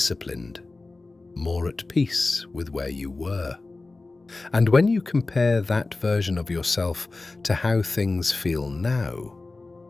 more at peace with where you were. And when you compare that version of yourself to how things feel now,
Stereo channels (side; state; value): right; quieter; 3.4 dB